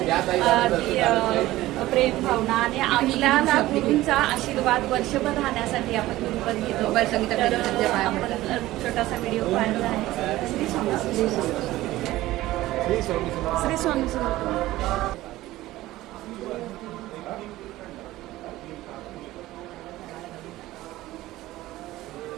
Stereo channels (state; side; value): quieter; left; 16.6 dB